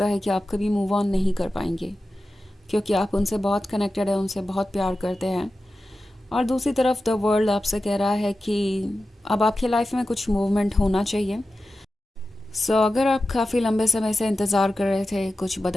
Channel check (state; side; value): normal; both; correlation 0.93